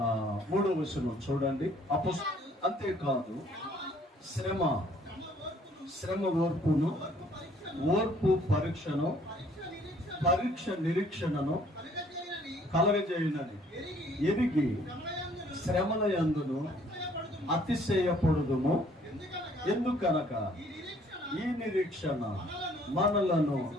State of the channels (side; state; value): both; normal; correlation 0.60